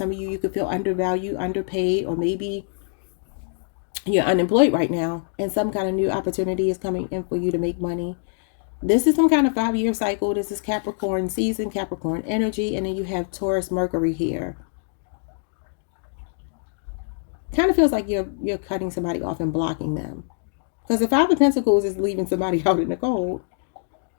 of you, you could feel undervalued, underpaid, or maybe you're unemployed right now and some kind of new opportunity is coming in for you to make money. This is some kind of 5-year cycle. This is Capricorn season, Capricorn energy, and then you have Taurus Mercury here. Kind of feels like you're cutting somebody off and blocking them. Because the Five of Pentacles is leaving somebody out in the cold.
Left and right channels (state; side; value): silent; right; digital silence